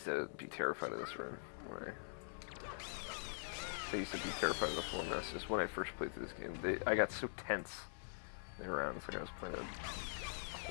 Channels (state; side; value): silent; right; digital silence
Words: to be terrified of this room. I used to be terrified of the floor mess, just when I first played through this game. I got so tense around, it's like I was playing a